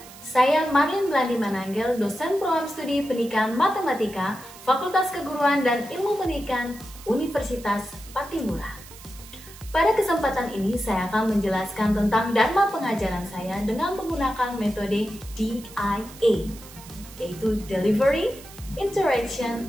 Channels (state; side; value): noise; right; hiss, 18 dB below the sound